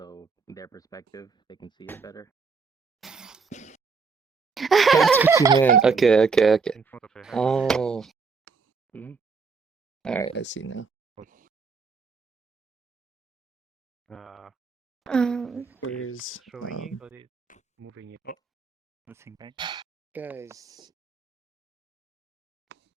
their perspective, they can see it better. That's what you meant. Okay. In front of her head. Oh. Alright, I see now. Where's showing it or it's moving it? Oh, nothing, right? guys?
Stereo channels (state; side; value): quieter; left; 5.0 dB